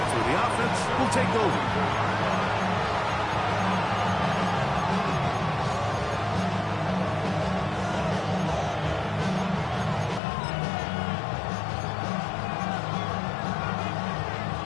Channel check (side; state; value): right; drops out; at 10.2 s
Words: where the offense will take over.